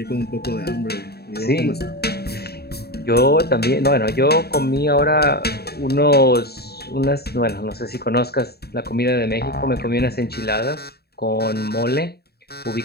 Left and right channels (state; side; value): late; right; 0.46 ms